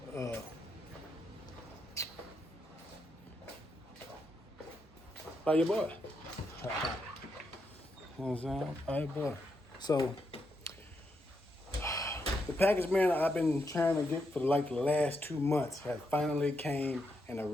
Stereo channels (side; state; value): both; normal; correlation 0.82